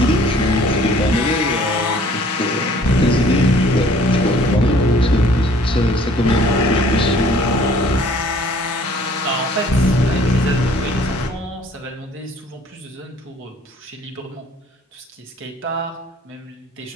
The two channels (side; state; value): both; normal; correlation 0.55